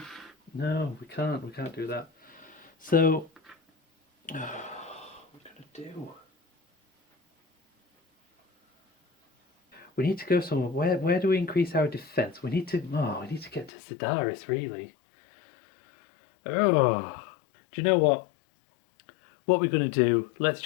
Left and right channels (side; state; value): right; drops out; at 13.7 s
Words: can't. We can't do that. So, what are we gonna do? We need to go somewhere. Where do we increase our defense? We need to get to Sidaris, really. Oh, do you know what? What we're gonna do? Let's